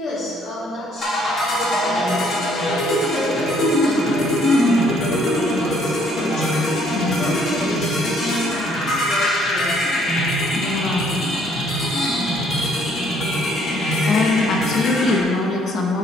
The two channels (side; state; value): both; normal; correlation 0.64